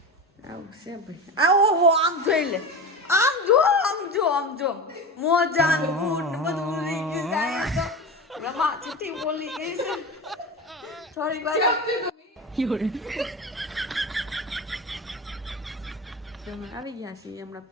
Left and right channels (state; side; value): normal; both; correlation 0.26